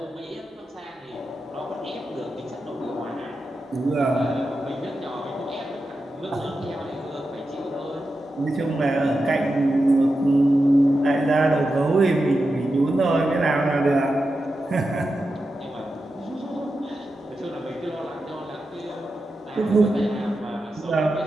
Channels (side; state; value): both; normal; correlation 0.90